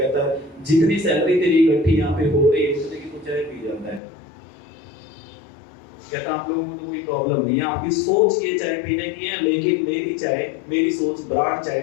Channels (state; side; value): drops out; right; at 4.0 s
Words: है जितनी सैलरी तेरी इकट्ठी यहाँ पे हो रही है उतने की तो चाय पी जाता है। कहता आप लोगों को तो कोई प्रॉब्लम नहीं है, आपकी सोच ये चाय पीने की है, लेकिन मेरी सोच ब्रांड चाय